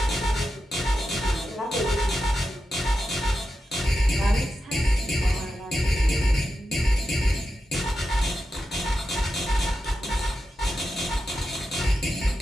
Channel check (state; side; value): normal; both; correlation 0.89